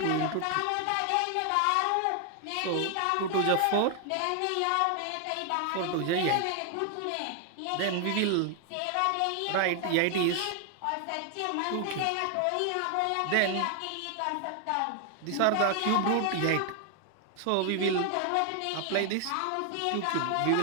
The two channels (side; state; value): both; different; correlation 0.00